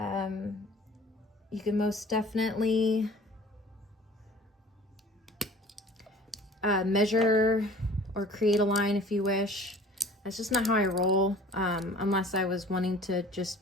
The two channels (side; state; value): both; normal; correlation 0.47